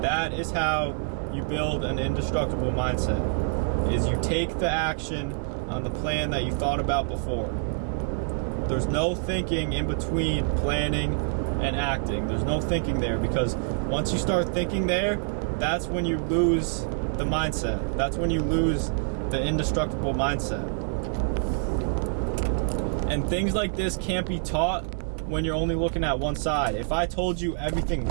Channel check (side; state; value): left; silent; 58 dB below the other